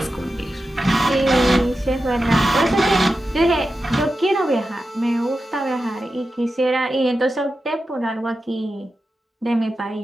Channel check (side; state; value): both; normal; correlation 0.91